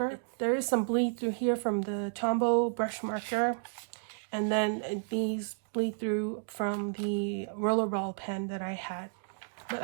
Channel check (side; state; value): left; silent; digital silence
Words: There is some bleed through here from the Tombow brush marker, and then these bleed through from the rollerball pen that I had. But